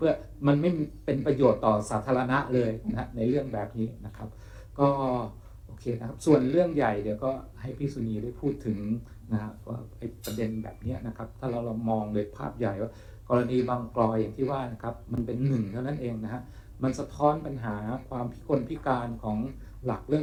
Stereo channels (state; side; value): identical; both; correlation 1.00